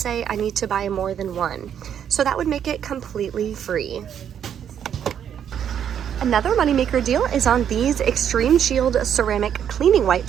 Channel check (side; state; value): left; quieter; 8.9 dB